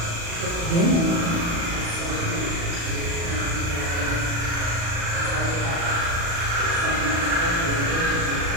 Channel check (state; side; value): late; left; 35 ms